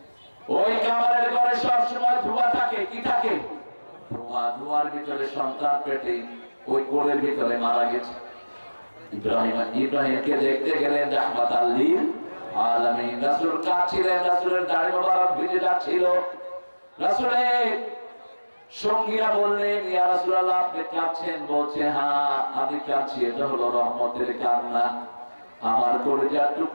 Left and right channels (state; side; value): inverted; both; correlation -1.00